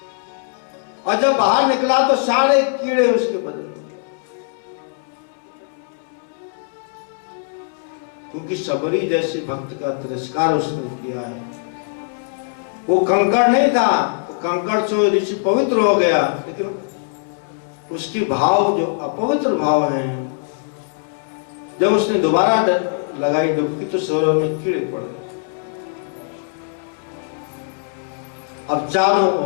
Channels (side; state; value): right; silent; 65 dB below the other